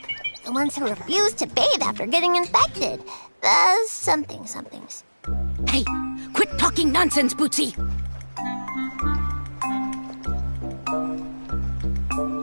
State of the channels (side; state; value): both; inverted; correlation -1.00